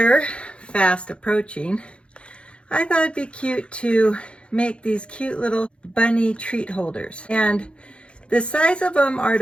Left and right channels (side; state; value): right; late; 0.058 ms